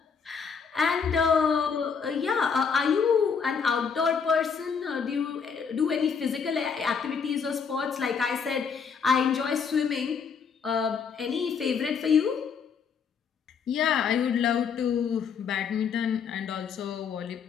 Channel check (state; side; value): quieter; right; 6.3 dB